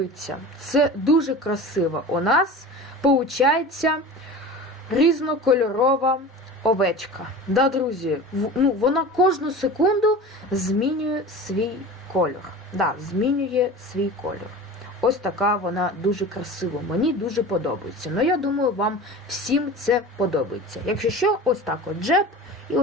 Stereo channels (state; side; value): normal; both; correlation 0.35